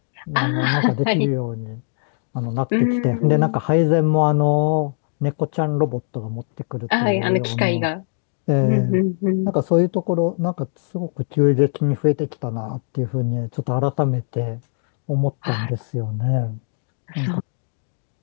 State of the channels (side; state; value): right; silent; digital silence